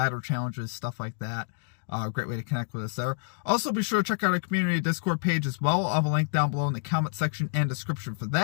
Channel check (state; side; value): silent; right; digital silence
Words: challenges, stuff like that. Great way to connect with us there. Also, be sure to check out our community Discord page as well. I'll have a link down below in the comment section and description for